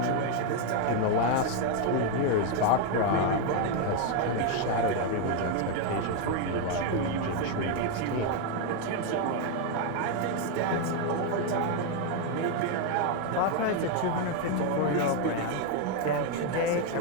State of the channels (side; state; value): both; different; correlation 0.01